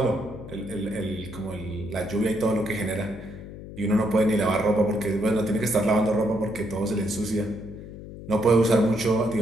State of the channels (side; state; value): left; noise; hum, 13 dB below the sound